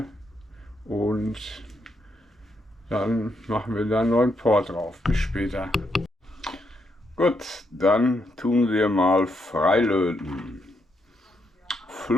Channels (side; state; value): both; normal; correlation 0.78